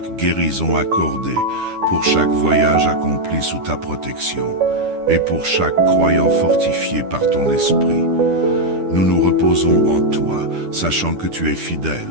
guérison accordée, pour chaque voyage accompli sous ta protection, et pour chaque croyant fortifié par ton esprit. Nous nous reposons en toi, sachant que tu es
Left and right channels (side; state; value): left; late; 10 ms